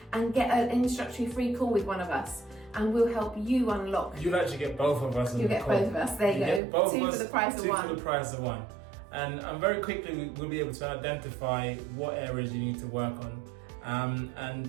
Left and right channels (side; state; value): left; drops out; at 6.6 s